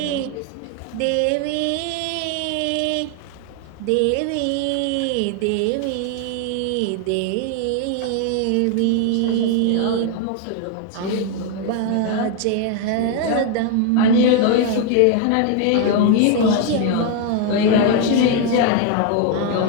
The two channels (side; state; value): both; different; correlation 0.01